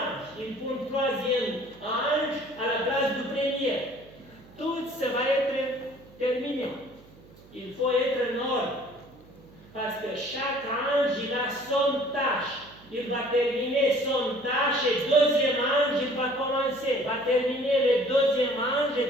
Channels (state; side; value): noise; right; hum, 24 dB below the sound